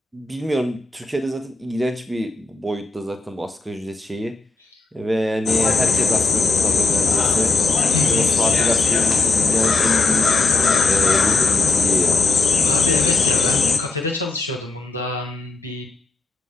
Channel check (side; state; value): right; quieter; 3.7 dB